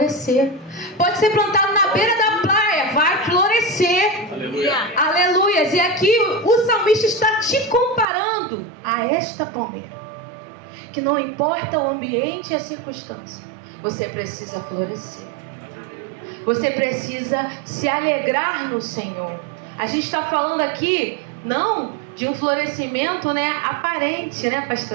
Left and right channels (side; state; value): left; drops out; at 8.1 s